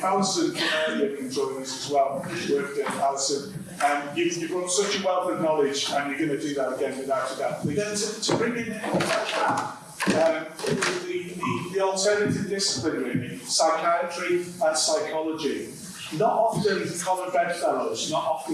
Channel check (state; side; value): identical; both; correlation 1.00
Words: Alison can join us as well, work with Alison. You've got such a wealth of knowledge, and you're going to do that again without a doubt. Then to bring in the alternative discipline, really, psychiatry and psychology. Not often common bedfellows, not